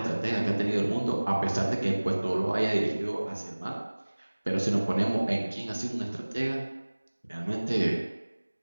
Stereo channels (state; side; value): inverted; both; correlation -1.00